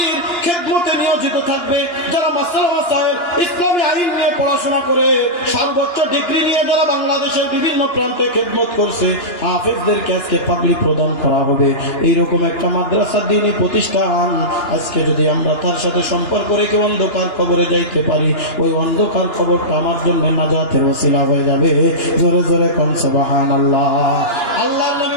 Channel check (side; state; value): right; late; 2.9 ms